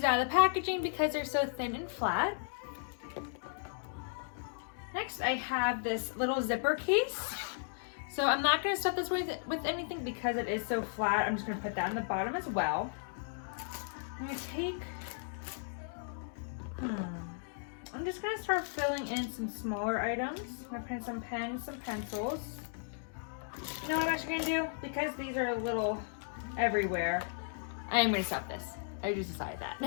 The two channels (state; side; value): silent; right; digital silence